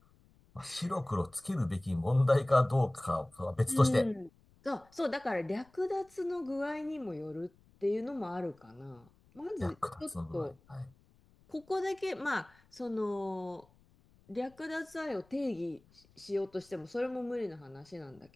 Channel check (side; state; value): left; noise; rumble, 30 dB below the sound